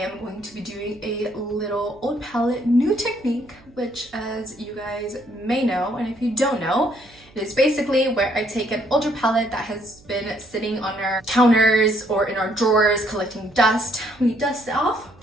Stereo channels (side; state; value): right; noise; hum, 26 dB below the sound